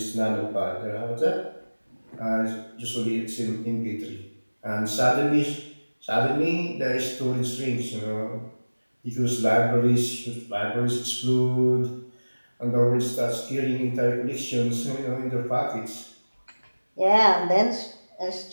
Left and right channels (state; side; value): inverted; both; correlation -1.00